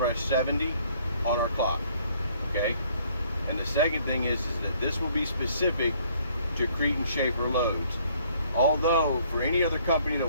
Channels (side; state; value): both; inverted; correlation -0.62